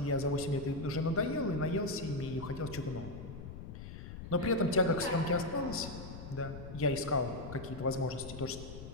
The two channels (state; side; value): noise; left; rumble, 11 dB below the sound